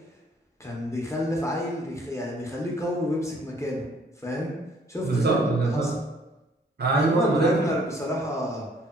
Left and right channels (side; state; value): both; normal; correlation 0.61